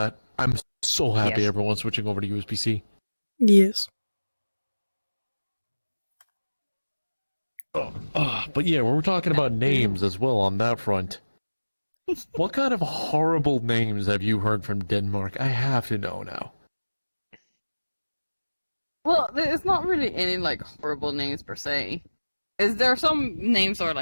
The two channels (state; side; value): inverted; both; correlation -1.00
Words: I'm so happy Yes. everyone's switching over to USB-C. Yes. But yeah, we're talking about names as well on that front. What kind of horrible names have you heard from Denmark? I have to know now. Well, there's not really any like horrible names per se. Is there some names that are